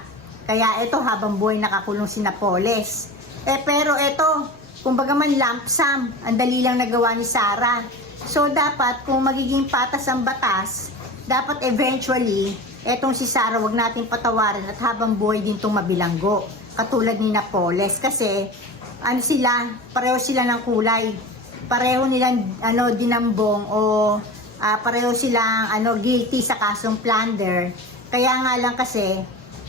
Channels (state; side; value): normal; both; correlation 0.32